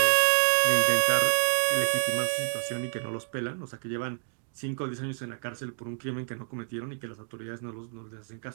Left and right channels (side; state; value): left; silent; 59 dB below the other